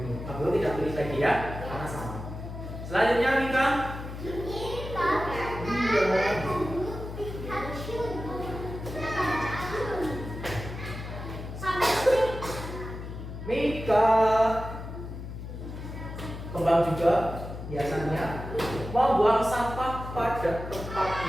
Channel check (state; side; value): noise; left; hum, 9 dB below the sound